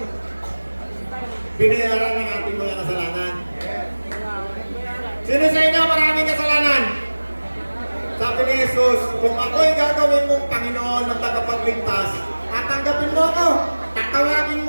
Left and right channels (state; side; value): inverted; both; correlation -1.00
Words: Binayaran ng ating mga kasalanan. Sino sa inyo maraming kasalanan? Sabi ni Jesus, kung ako'y gagawin mong Panginoon ng tagapagligtas, tatanggapin mo ako, tatawagin